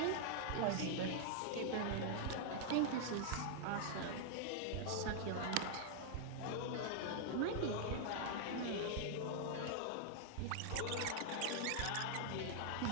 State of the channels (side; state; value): both; different; correlation -0.01